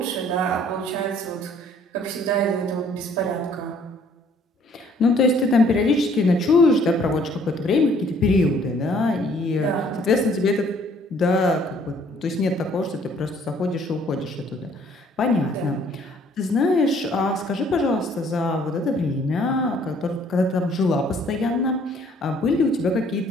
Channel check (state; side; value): normal; both; correlation 0.60